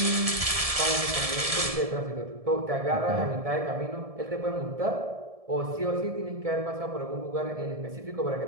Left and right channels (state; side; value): late; left; 1.7 ms